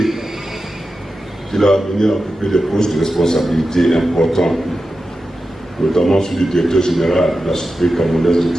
il a venu occuper des postes de responsabilité importants, notamment celui du directeur général de la Société camerounaise de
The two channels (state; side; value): normal; both; correlation 0.92